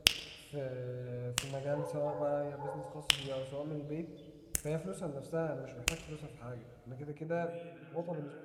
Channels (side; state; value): both; identical; correlation 1.00